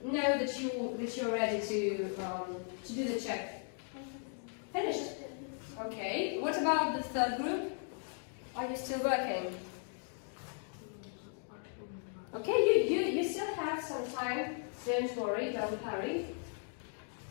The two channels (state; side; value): silent; right; 53 dB below the other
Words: know that you're ready to do the check. Finished. Okay. What about the third group? Are you still working? Okay, you still have some time. Don't worry, don't hurry.